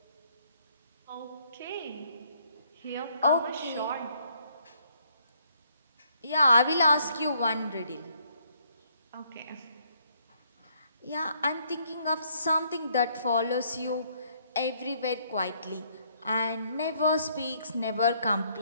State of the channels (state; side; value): inverted; both; correlation -0.68